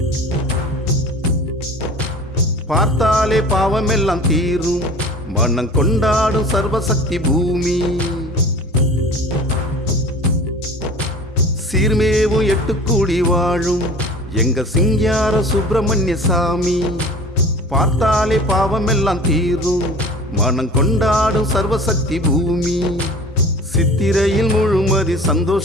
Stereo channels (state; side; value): normal; both; correlation 0.42